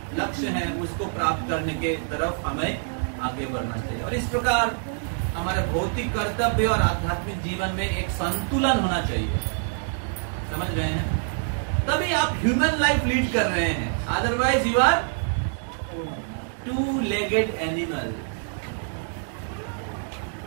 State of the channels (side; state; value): left; silent; digital silence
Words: लक्ष्य है उसको प्राप्त करने के तरफ हमें आगे बढ़ना चाहिए। और इस प्रकार हमारे भौतिक कर्तव्य और आध्यात्मिक जीवन में एक संतुलन होना चाहिए। समझ रहे हैं? तभी आप ह्यूमन लाइफ लीड कर रहे हैं, otherwise you are two legged animal.